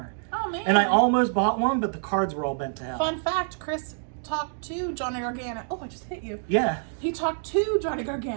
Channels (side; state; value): left; silent; digital silence